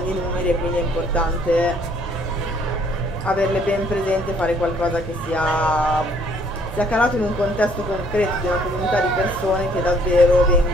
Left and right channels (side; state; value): both; normal; correlation 0.62